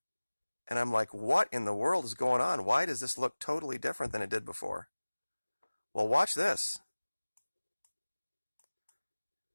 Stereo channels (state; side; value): inverted; both; correlation -1.00